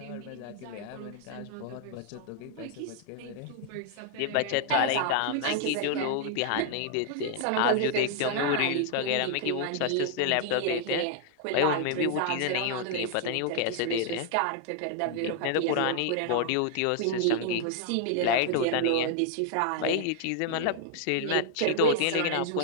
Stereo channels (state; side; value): different; both; correlation 0.00